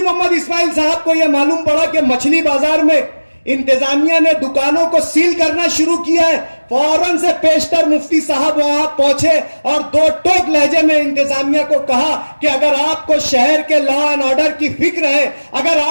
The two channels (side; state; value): both; inverted; correlation -1.00